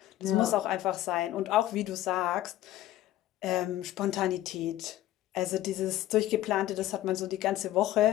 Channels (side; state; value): right; quieter; 14.3 dB